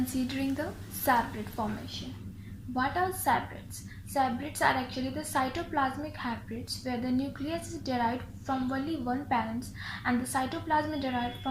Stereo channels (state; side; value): identical; both; correlation 1.00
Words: the hybrid formation. What are hybrids? Hybrids are actually the cytoplasmic hybrids where the nucleus is derived from only one parent and the cytoplasm is derived